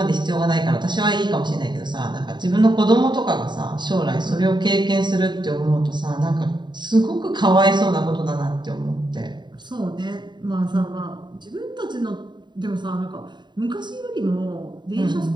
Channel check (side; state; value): left; late; 0.22 ms